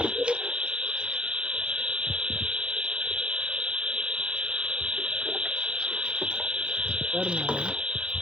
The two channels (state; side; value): late; left; 0.055 ms